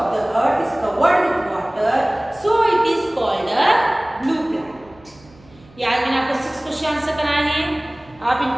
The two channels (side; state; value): right; noise; hum, 27 dB below the sound